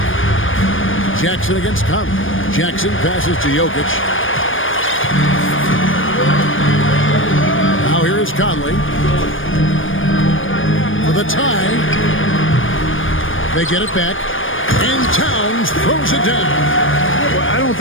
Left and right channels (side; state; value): right; late; 0.58 ms